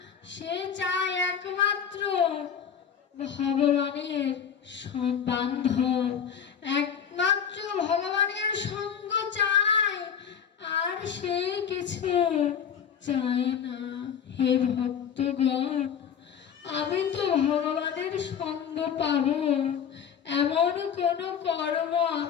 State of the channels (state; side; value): quieter; right; 7.8 dB